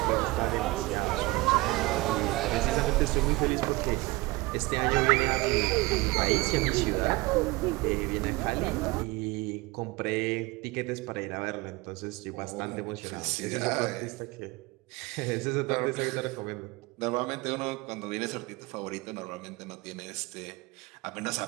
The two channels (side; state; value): left; quieter; 22.2 dB